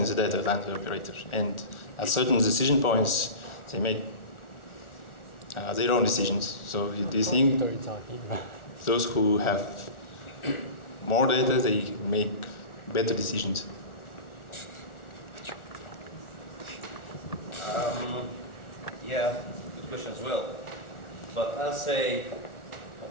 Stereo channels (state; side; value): late; right; 1.4 ms